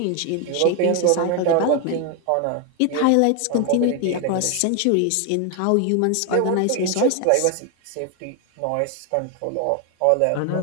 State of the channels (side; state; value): both; different; correlation 0.01